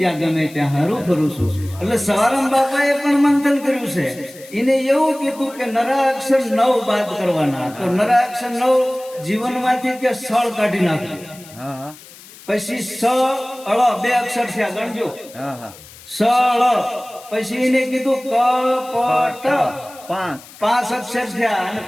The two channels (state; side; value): noise; left; hiss, 20 dB below the sound